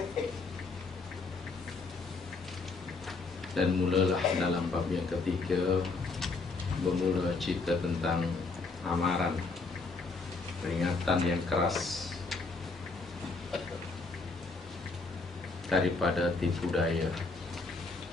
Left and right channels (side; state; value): right; quieter; 3.9 dB